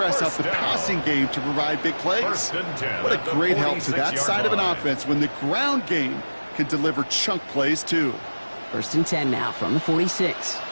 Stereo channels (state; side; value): inverted; both; correlation -1.00